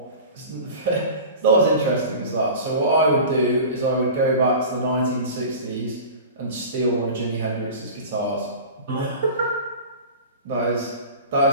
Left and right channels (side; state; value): both; inverted; correlation -0.36